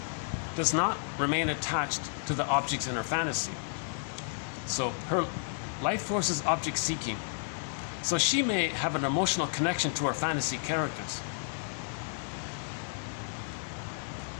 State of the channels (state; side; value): silent; right; 56 dB below the other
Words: does not remain attached to the objects in her fantasy. So her life force is object seeking. So she may have an emotional connection to her fantasy characters,